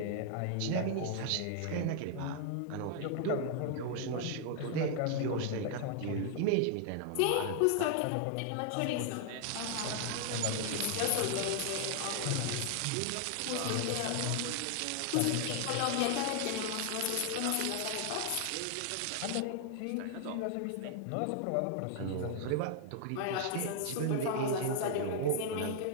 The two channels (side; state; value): both; different; correlation 0.00